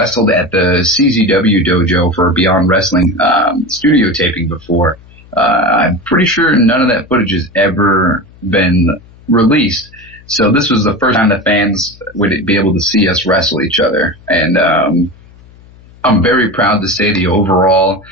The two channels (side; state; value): left; noise; hum, 25 dB below the sound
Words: at the CZW dojo for Beyond Wrestling, studio taping before. I'm pretty sure none of that footage has ever been released. So this was the first time the fans would be able to see us wrestle each other. And, I'm very proud to say the overall,